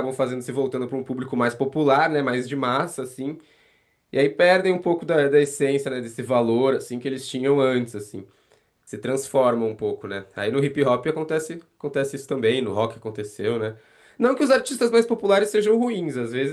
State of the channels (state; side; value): identical; both; correlation 1.00